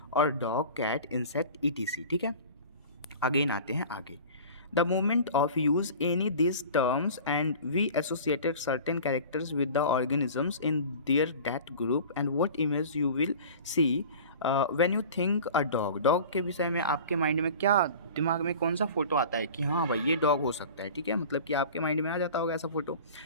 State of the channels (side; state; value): both; inverted; correlation -0.40